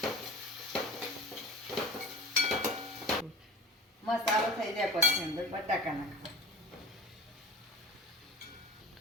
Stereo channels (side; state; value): both; normal; correlation 0.35